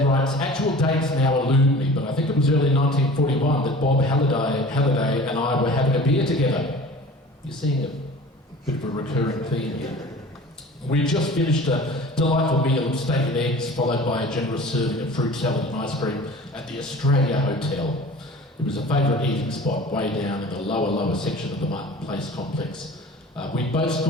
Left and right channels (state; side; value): normal; both; correlation 0.42